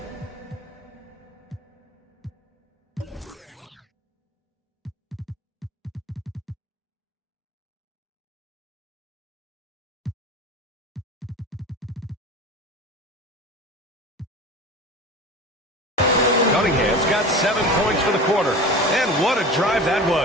Cunningham's got 7 points for the quarter. And what a drive that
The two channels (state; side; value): normal; both; correlation 0.34